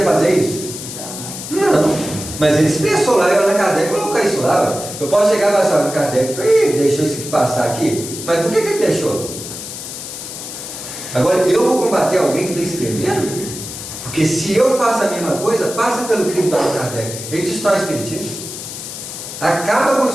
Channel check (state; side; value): noise; left; hiss, 9 dB below the sound